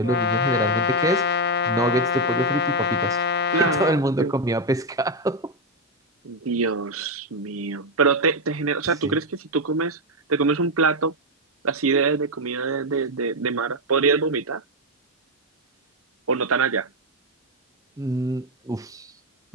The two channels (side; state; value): both; normal; correlation 0.04